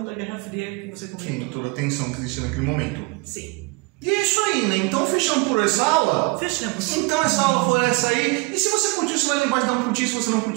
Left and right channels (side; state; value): left; quieter; 28.1 dB